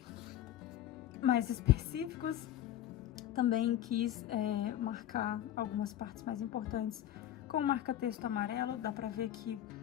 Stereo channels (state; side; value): quieter; right; 12.0 dB